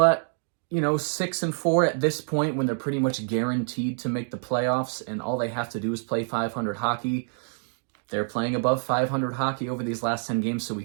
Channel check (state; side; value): silent; left; 60 dB below the other